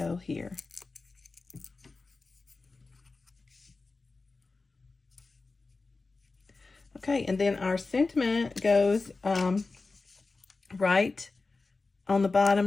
here. Okay, and then our sentiment goes right on the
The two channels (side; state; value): right; quieter; 3.8 dB